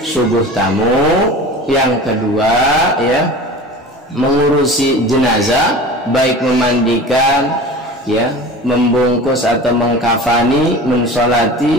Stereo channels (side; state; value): both; normal; correlation 0.36